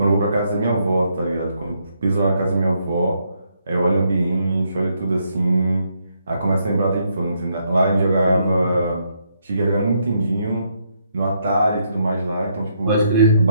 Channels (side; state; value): both; inverted; correlation -0.75